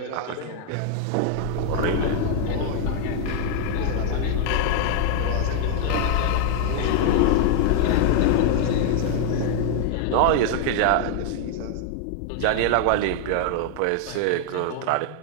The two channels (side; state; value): both; different; correlation 0.00